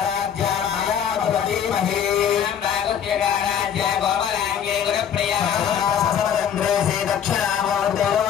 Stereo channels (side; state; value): right; quieter; 8.6 dB